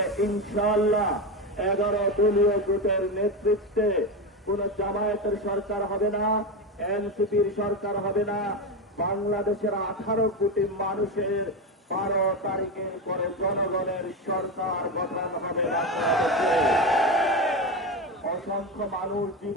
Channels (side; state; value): both; normal; correlation 0.17